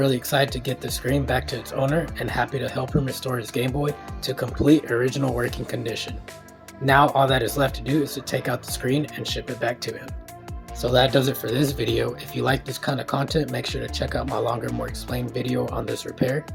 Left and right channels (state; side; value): identical; both; correlation 1.00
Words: excited to get the screen back to its owner and happy to help him restore his Game Boy to complete original working condition. Now all that is left to do is to take out the screen and ship it back to him. So that does it for this video. If you like this kind of content, make sure to check out my longer, more explained video on this repair